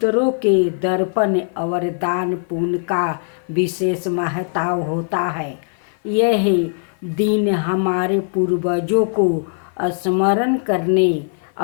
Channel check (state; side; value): silent; right; 55 dB below the other